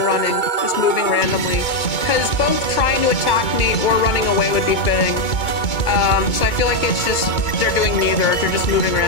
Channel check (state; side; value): late; right; 2.2 ms